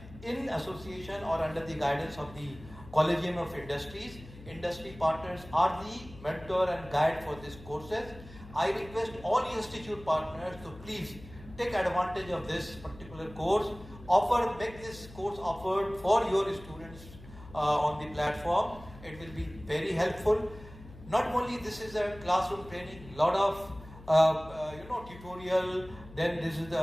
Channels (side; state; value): left; noise; hum, 18 dB below the sound